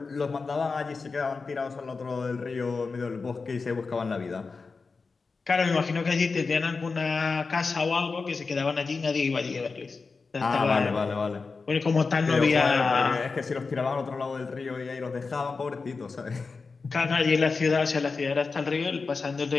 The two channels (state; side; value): quieter; right; 4.4 dB